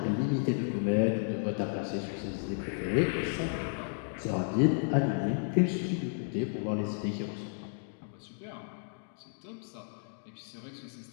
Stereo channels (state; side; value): silent; right; digital silence